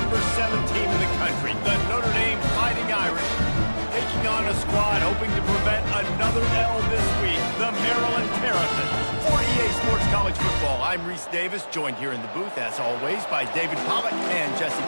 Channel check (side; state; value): both; inverted; correlation -1.00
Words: 7 team in the country, the Notre Dame Fighting Irish, taking on a squad hoping to prevent another L this week, the Maryland Terrapins. For EA Sports College Football, I'm Reese Davis, joined here in the booth, as always, by David Pollock and Jesse